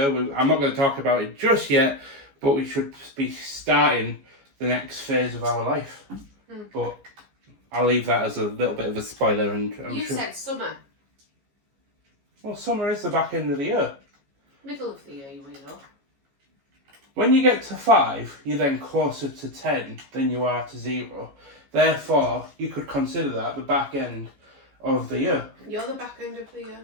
I'm not going to talk about it just yet, but we should be starting the next phase of our life. But I'll leave that as a little bit of a spoiler. And You said summer. Well, summer is the back end of the year. Middle of the year, you weirdo. When you get to 5, you're then closer to 10 than you are to 0. Therefore, you could consider that the back end of the year. You're the back end of the year.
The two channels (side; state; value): left; late; 15 ms